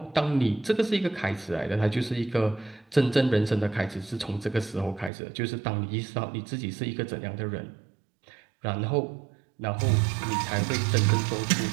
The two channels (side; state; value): left; drops out; at 5.1 s